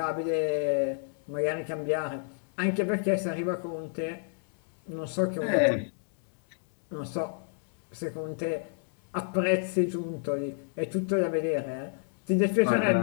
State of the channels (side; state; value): right; silent; digital silence